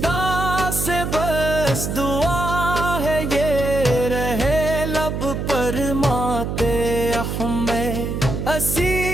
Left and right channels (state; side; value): noise; right; hum, 3 dB below the sound